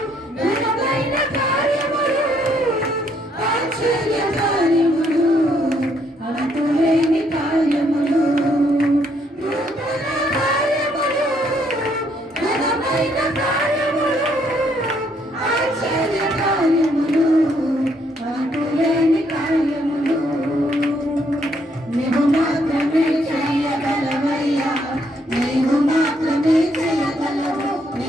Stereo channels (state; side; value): normal; both; correlation 0.71